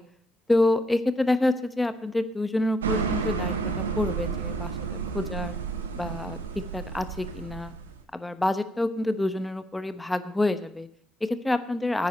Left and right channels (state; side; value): normal; both; correlation 0.73